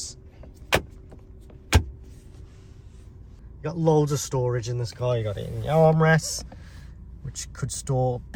You got loads of storage in this car. You got it in your armrests, which could store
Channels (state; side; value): identical; both; correlation 1.00